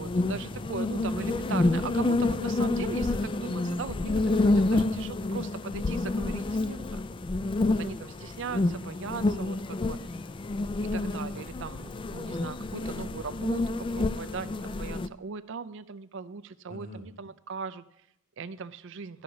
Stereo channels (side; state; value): both; normal; correlation 0.73